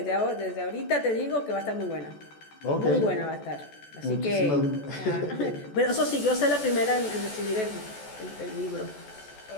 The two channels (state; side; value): late; right; 14 ms